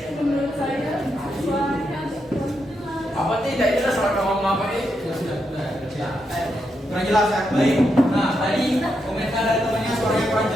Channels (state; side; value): normal; both; correlation 0.83